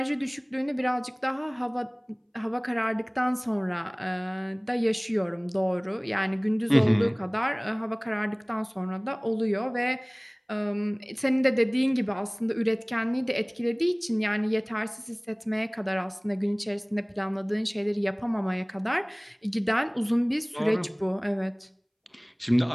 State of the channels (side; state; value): both; identical; correlation 1.00